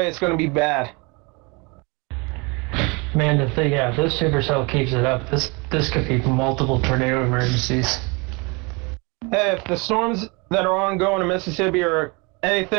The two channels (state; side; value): quieter; left; 29.0 dB